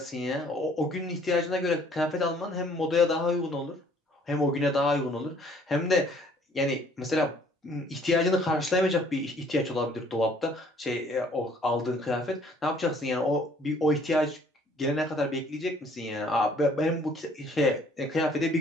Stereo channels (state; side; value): normal; both; correlation 0.59